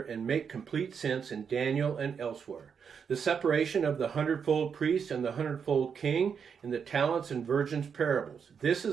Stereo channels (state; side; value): quieter; left; 6.7 dB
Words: and make complete sense in Daniel and elsewhere. The separation of the 100-fold priest and the 100-fold king in the talents and virgins parables. This